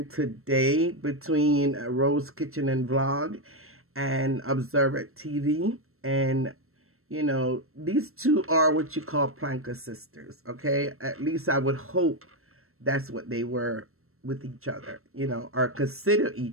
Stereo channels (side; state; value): left; late; 0.62 ms